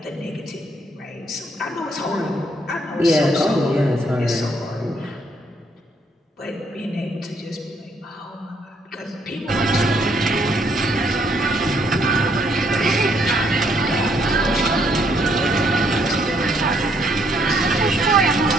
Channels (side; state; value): both; normal; correlation 0.70